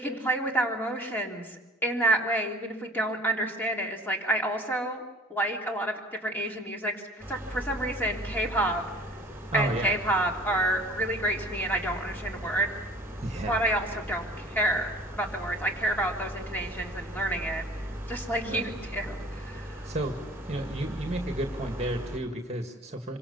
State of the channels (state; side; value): normal; both; correlation 0.48